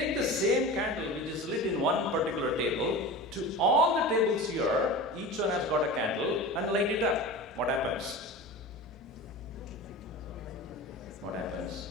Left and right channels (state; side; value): normal; both; correlation 0.32